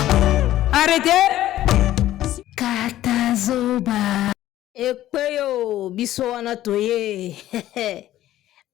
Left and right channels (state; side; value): quieter; right; 13.8 dB